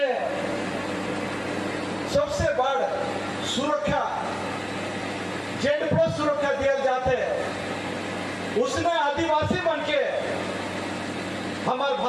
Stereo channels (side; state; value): both; identical; correlation 1.00